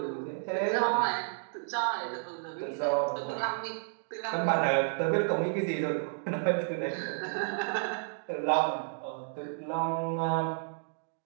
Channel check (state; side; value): silent; left; digital silence